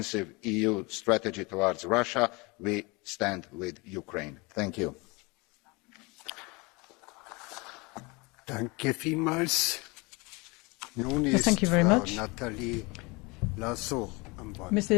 EU strategy towards Russia, we stand with Ukraine. Thank you. Danke vielmals. Yes, thank you very much.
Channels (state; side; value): quieter; right; 26.7 dB